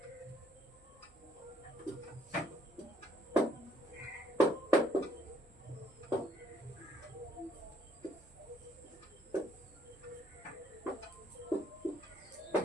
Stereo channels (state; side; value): normal; both; correlation 0.67